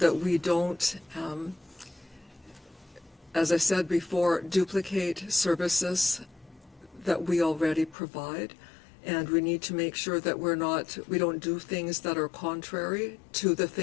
we don't, as I said before, duplicate services that we already provide. And we need to make sure that we don't do things that are contrary to the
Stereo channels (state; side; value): drops out; right; at 8.0 s